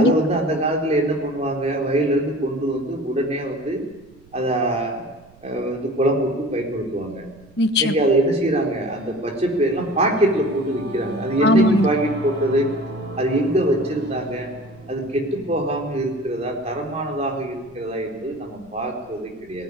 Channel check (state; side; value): noise; right; rumble, 27 dB below the sound